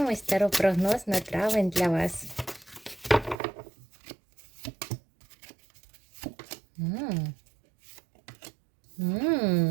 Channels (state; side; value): drops out; left; at 3.4 s